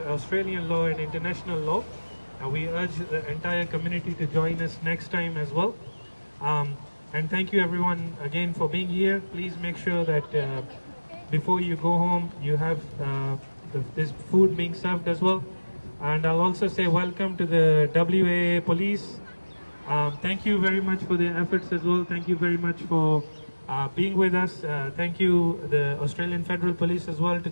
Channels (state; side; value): inverted; both; correlation -1.00